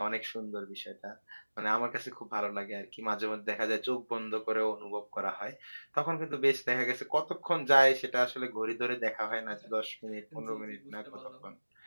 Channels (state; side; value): inverted; both; correlation -1.00